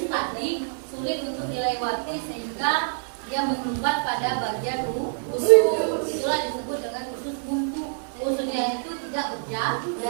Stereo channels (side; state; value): left; silent; 61 dB below the other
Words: tadi sulit untuk dilewati, sehingga dia menyumbat pada bagian usus. Itulah disebut dengan usus buntu. Ususnya itu tidak berjalan